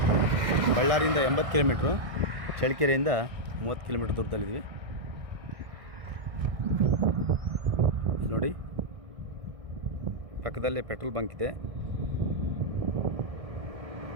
ಬಳ್ಳಾರಿಯಿಂದ 80 kilometre, ಚಳ್ಳಕೆರೆಯಿಂದ 30 ಕಿಲೋಮೀಟ್ರ್ ದೂರದಲ್ಲಿದ್ವಿ ನೋಡಿ. ಪಕ್ಕದಲ್ಲೇ ಪೆಟ್ರೋಲ್ ಬಂಕ್ ಇದೆ.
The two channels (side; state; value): left; late; 1.6 ms